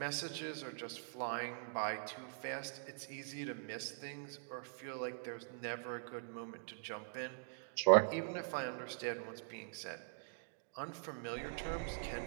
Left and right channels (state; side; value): silent; left; digital silence